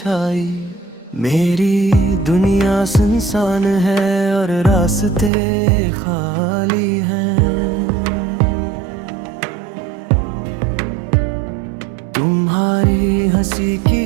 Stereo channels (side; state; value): left; drops out; at 5.3 s